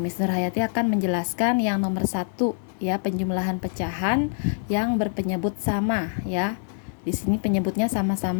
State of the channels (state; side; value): silent; right; digital silence